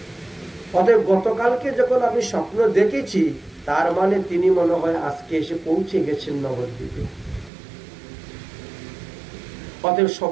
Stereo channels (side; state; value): left; drops out; at 7.5 s